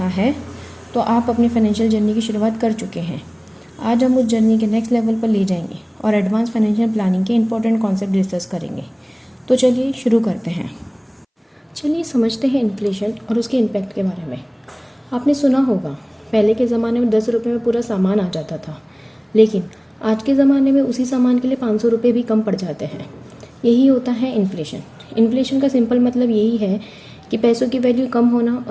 है तो आप अपनी फाइनेंशियल जर्नी की शुरुआत कर चुके हैं। आज हम उस जर्नी के नेक्स्ट लेवल पर ले जाएंगे और एडवांस फाइनेंशियल प्लानिंग के इंपॉर्टेंट कॉन्सेप्ट डिस्कस करेंगे। तो चलिए शुरू करते हैं। चलिए समझते हैं इन्फ्लेशन और उसके इम्पैक्ट के बारे में। आपने सुना होगा, पहले के ज़माने में 10 रुपये में पूरा सामान आ जाता था, लेकिन आज के ज़माने में उसी सामान के लिए 500 रुपये भी कम पड़ जाते हैं। यही होता है इन्फ्लेशन। इन्फ्लेशन का सिंपल मतलब यही है कि पैसों की वैल्यू कम होना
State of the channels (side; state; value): both; identical; correlation 1.00